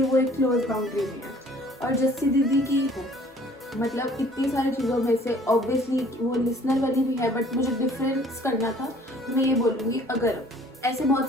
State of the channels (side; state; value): both; normal; correlation 0.55